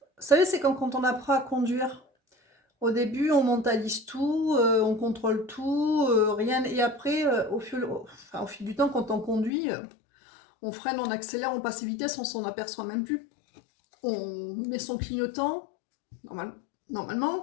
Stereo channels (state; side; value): drops out; right; at 9.5 s